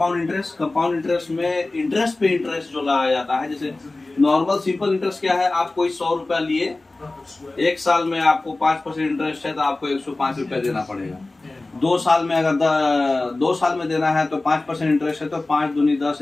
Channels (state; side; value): quieter; right; 3.1 dB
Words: इंटरेस्ट। कंपाउंड इंटरेस्ट में इंटरेस्ट पे इंटरेस्ट जो लगाया जाता है, जैसे नॉर्मल सिंपल इंटरेस्ट क्या है, आप कोई 100 रुपया लिए, एक साल में आपको 5% इंटरेस्ट है तो आपको 105 रुपया देना पड़ेगा। 2 साल में अगर 2 साल में देना है तो 5% इंटरेस्ट है तो 5 दूनी 10,